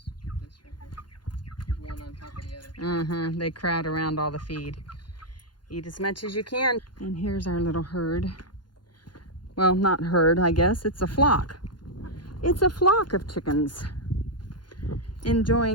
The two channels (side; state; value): right; late; 0.71 ms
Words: right here. There's one on top of the other. They crowd around all the feed. Eat as much as you can. And here's our little herd. Well, not herd, I guess. It's a flock. It's a flock of chickens.